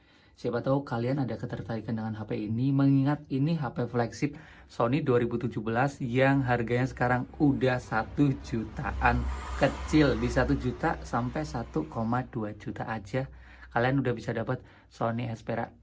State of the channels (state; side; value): identical; both; correlation 1.00